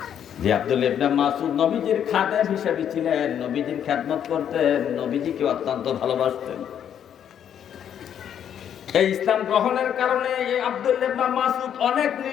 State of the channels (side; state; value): right; quieter; 9.2 dB